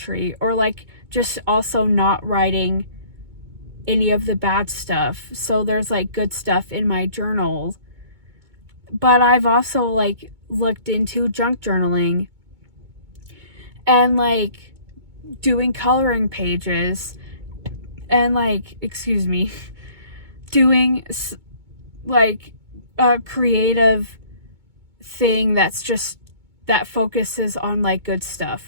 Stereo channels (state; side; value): late; left; 2.2 ms